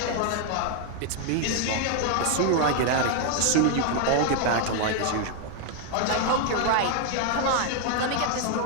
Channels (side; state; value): both; different; correlation 0.00